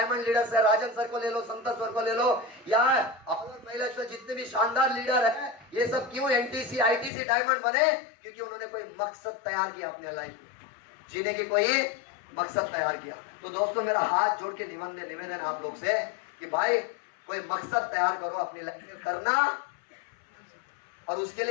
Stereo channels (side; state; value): right; drops out; at 7.1 s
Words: लीडर्स है, राजन सर को ले लो, संतोष सर को ले लो, या और महिला जितने भी शानदार लीडर है, ये सब क्यों एनटीसी आईटीसी डायमंड बने? क्योंकि उन्होंने कोई मकसद तैयार किया अपने लाइफ में, जीने की कोई मकसद तैयार किया। तो दोस्तों मेरा हाथ जोड़ के निवेदन आप लोग से कि भाई कोई मकसद तैयार करो अपनी लाइफ में करना, और उसके